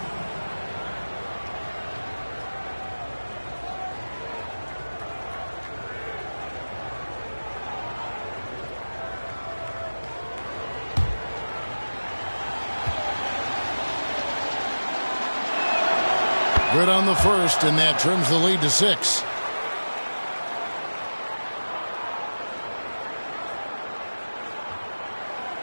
Good on the first, and that trims the lead to 6.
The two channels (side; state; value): both; inverted; correlation -1.00